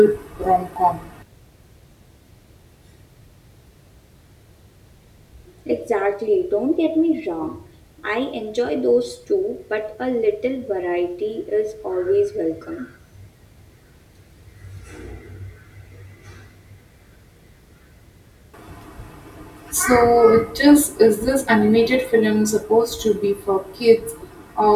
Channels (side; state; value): both; identical; correlation 1.00